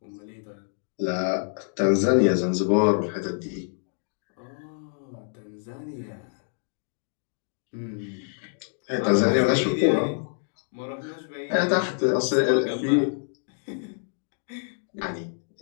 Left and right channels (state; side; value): silent; right; digital silence